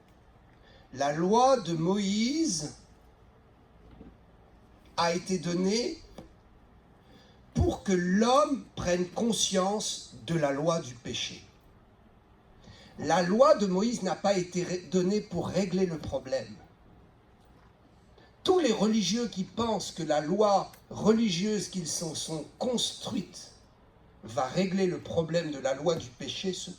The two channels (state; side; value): identical; both; correlation 1.00